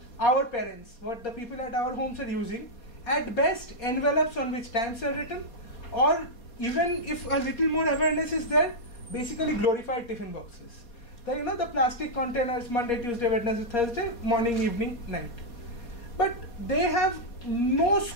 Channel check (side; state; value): right; late; 4.2 ms